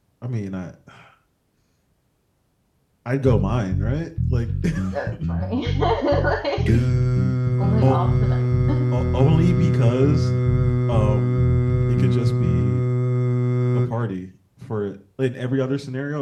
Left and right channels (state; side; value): identical; both; correlation 1.00